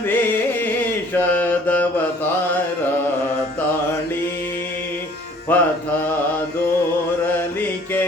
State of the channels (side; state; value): both; normal; correlation 0.54